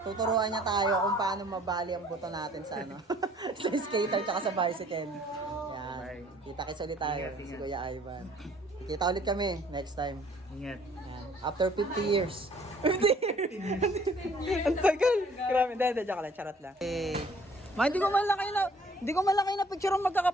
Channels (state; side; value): normal; both; correlation 0.58